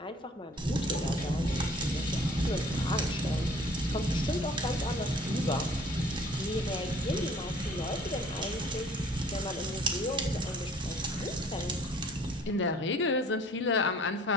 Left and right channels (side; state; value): both; normal; correlation 0.53